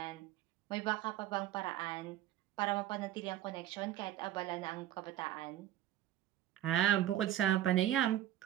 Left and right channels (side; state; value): left; quieter; 13.1 dB